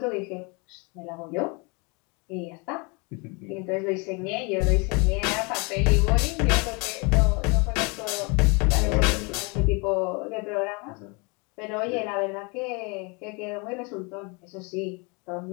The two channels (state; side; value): quieter; right; 30.6 dB